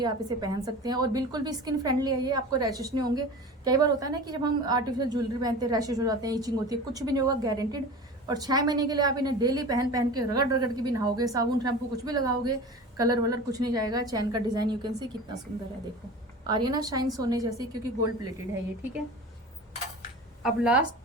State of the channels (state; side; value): normal; both; correlation 0.35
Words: आप इसे पहन सकते हैं, और बिल्कुल भी स्किन फ्रेंडली है ये, आपको रैशेस नहीं होंगे। कई बार होता है ना कि जब हम आर्टिफिशियल ज्वेलरी पहनते हैं रैशेस हो जाते हैं, इचिंग होती है, कुछ भी नहीं होगा, गारंटेड। और 6 महीने के लिए आप इन्हें डेली पहन के रगड़ रगड़ के भी नहाओगे, साबुन शैम्पू कुछ भी लगाओगे, कलर वलर कुछ नहीं जाएगा। चैन का डिजाइन यू कैन सी कितना सुंदर है, देखो आ रही है ना शाइन सोने जैसी, क्योंकि गोल्ड प्लेटेड है ये, ठीक है। अब